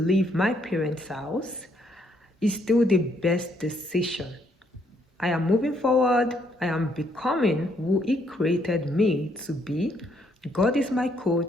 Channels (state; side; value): normal; both; correlation 0.71